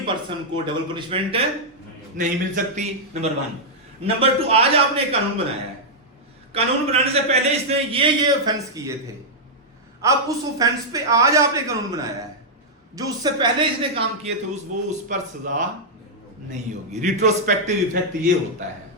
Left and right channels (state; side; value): normal; both; correlation -0.06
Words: पर्सन को डबल पनिशमेंट नहीं मिल सकती, नंबर 1। नंबर 2, आज आपने एक कानून बनाया है। कानून बनाने से पहले इसने ये ऑफेंस किए थे। अब उस ऑफेंस पे आज आपने कानून बनाया है, जो उससे पहले इसने काम किए थे उस पर सजा नहीं होगी। रिट्रोस्पेक्टिव इफेक्ट ये होता है।